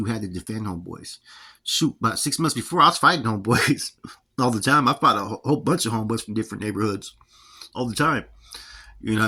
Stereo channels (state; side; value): identical; both; correlation 1.00